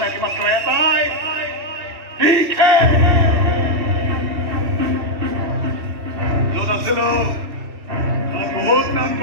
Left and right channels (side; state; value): left; late; 3.3 ms